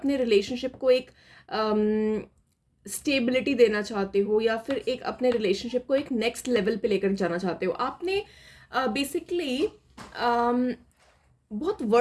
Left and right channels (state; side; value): identical; both; correlation 1.00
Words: रिलेशनशिप को एक स्टेबिलिटी देना चाहते हो या फिर एक अपने रिलेशनशिप को एक नेक्स्ट लेवल पे लेकर जाना चाहते हो। आपने बेसिकली बहुत